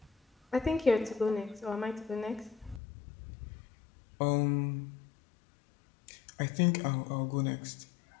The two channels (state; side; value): drops out; right; at 2.8 s